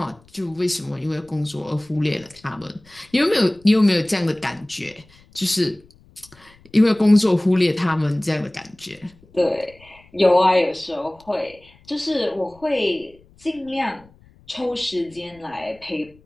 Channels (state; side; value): noise; left; rumble, 28 dB below the sound